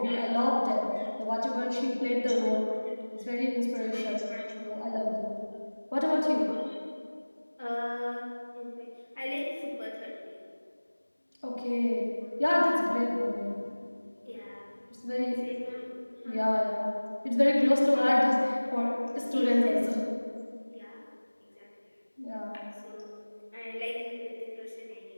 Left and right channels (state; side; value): inverted; both; correlation -1.00